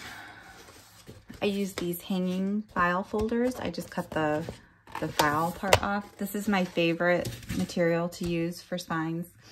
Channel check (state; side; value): identical; both; correlation 1.00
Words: I use these hanging file folders. I just cut the file part off. This is my favorite material to use for spines,